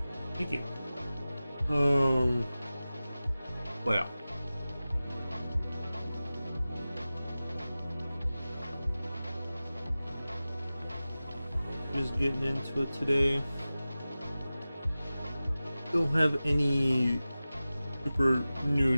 Thank you. Well. Just getting into it today. Don't have any super new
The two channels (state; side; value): inverted; both; correlation -0.96